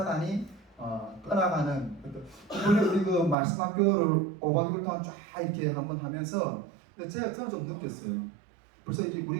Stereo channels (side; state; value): left; drops out; at 3.4 s